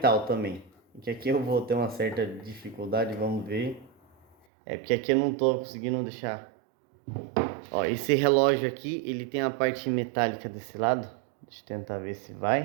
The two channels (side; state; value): left; drops out; at 4.4 s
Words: também. Que aqui eu vou ter uma certa dificuldade, vamos ver. Porque aqui eu não estou conseguindo deixar. Ó, esse relógio aqui, ele tem a parte metálica desse lado. Deixa eu tentar ver se